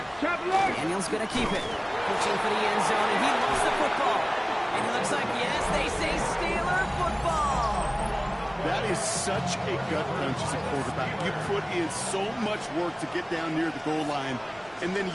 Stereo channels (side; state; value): both; identical; correlation 1.00